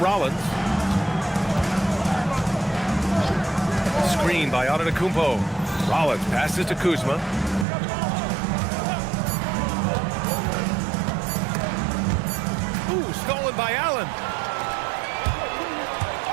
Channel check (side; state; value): left; drops out; at 7.7 s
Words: Screen by Antetokounmpo. Rollins passes to Kuzma. Ooh, stolen by Allen.